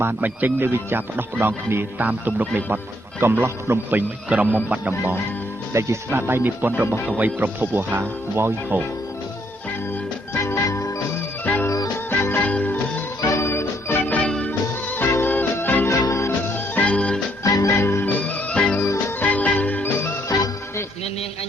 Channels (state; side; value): normal; both; correlation 0.70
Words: បានបញ្ចេញនូវវិចារផ្ដោះផ្ដងគ្នាតាមទំនុកនៃបទកំឡោះភ្នំពេញក្រមុំបាត់ដំបងដែលជាស្នាដៃនិពន្ធរបស់កវីប្រភពវោហាវ៉យហូអ្នកនាងអ